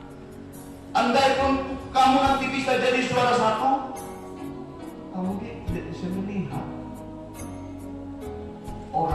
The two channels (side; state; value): both; identical; correlation 1.00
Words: andaikan kamu nanti bisa jadi juara satu, kamu tidak bisa melihat